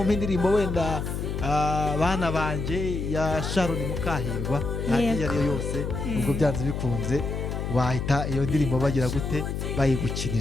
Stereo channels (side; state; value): left; noise; hum, 3 dB below the sound